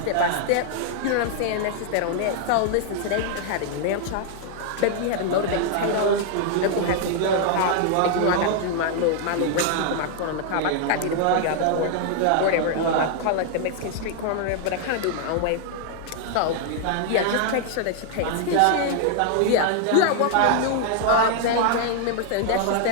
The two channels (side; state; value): both; different; correlation 0.00